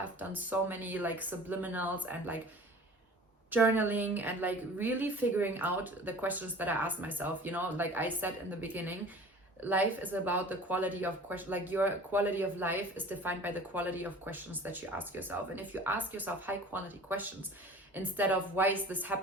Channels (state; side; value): normal; both; correlation 0.43